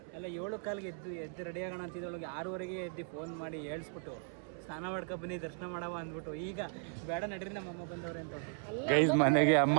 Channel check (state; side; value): silent; left; 53 dB below the other